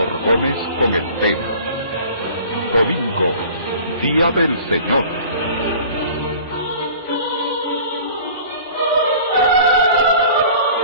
Gómez con el tema Domingo, Día del Señor.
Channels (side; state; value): both; inverted; correlation -0.45